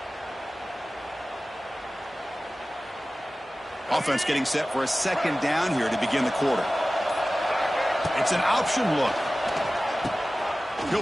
Offense getting set for a 2nd down here to begin the quarter. It's an option look.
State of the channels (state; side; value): normal; both; correlation 0.97